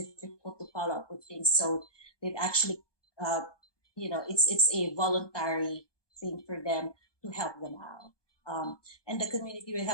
difficult to follow up with things. So they've actually, it's a voluntary thing for them to help them out. And the community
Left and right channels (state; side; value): late; right; 1.2 ms